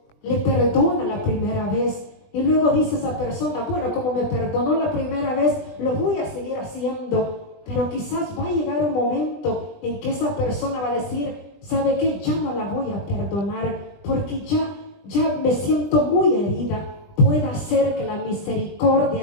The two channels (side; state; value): right; late; 20 ms